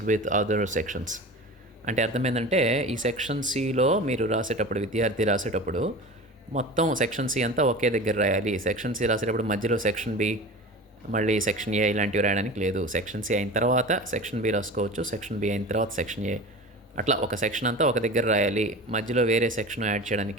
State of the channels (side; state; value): both; normal; correlation 0.33